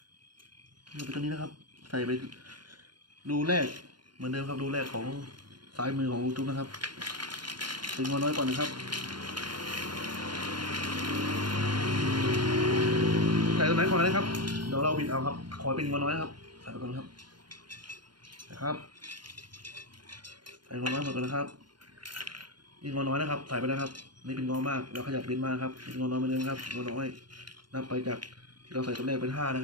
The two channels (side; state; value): left; late; 0.71 ms